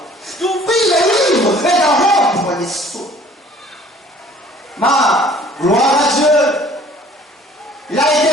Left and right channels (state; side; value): normal; both; correlation 0.53